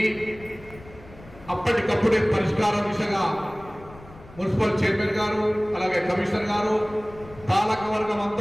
అప్పటికప్పుడే పరిష్కార దిశగా మున్సిపల్ చైర్మన్ గారు అలాగే కమిషనర్ గారు పాలక వర్గం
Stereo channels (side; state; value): left; noise; rumble, 20 dB below the sound